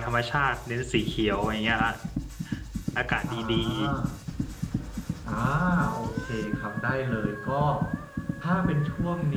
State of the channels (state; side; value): identical; both; correlation 1.00